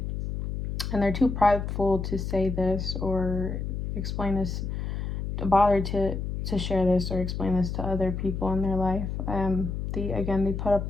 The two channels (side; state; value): left; noise; hum, 4 dB below the sound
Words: they're too prideful to say this or explain this, to bother to share this or explain this to other people in their life. They put up